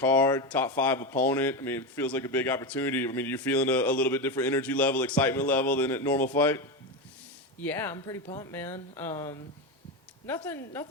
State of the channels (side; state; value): both; normal; correlation 0.15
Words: top 5 opponent. I mean, it feels like a big opportunity. I mean, you're feeling a little bit different energy level, excitement level than a normal fight? Yeah, I'm pretty pumped, man.